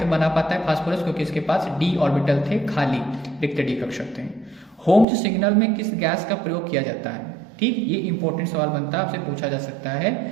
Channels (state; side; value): drops out; left; at 5.1 s